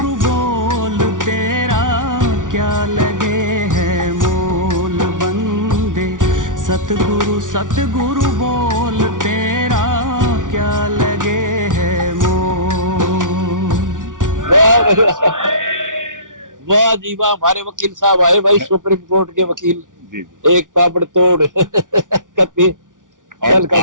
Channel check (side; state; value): left; late; 0.88 ms